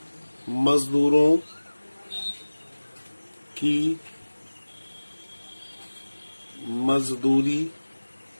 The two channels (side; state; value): both; inverted; correlation -1.00